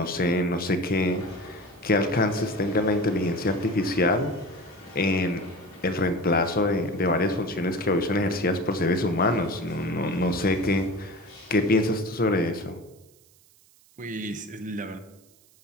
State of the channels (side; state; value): right; noise; hiss, 29 dB below the sound